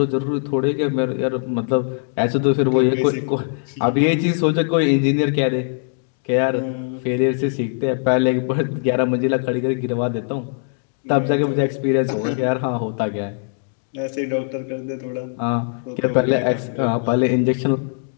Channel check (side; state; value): right; silent; digital silence